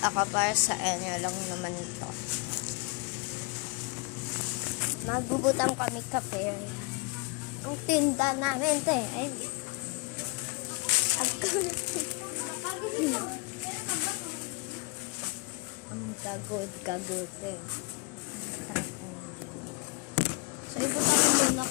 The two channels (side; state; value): right; quieter; 31.9 dB